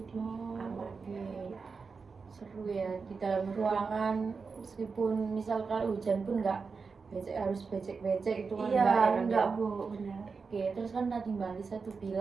aman. Oke. Seru ya di dalam ruangan, meskipun misal kalau hujan pun nggak harus becek-becek itu kan Iya, kan enggak ya? Bu, benar. Oke, terus kan tadi Mbak Lisa tuh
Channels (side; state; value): left; quieter; 4.9 dB